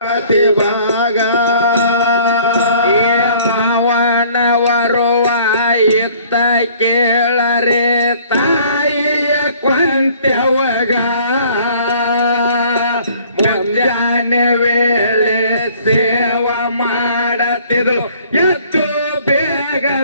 ಕತಿಭಾಗ ಮಾವನವರುವ ಇದ್ದ ಕೇಳರೆ ತಾಯಿಯ ಕೊಂತೆವಗ ಮುಂಜಾನೆ ವೇಳೆ ಸೇವ ಮಾಡತಿದ್ರು ಎದ್ದು ಬೇಗ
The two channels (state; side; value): inverted; both; correlation -0.55